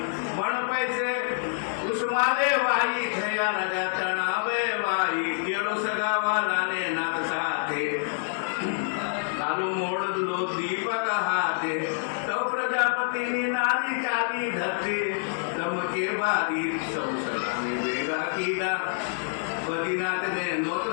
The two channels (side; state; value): right; silent; digital silence